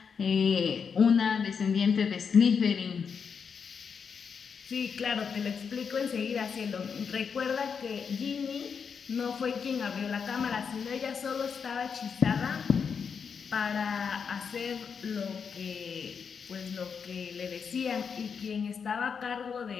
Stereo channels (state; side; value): quieter; right; 6.3 dB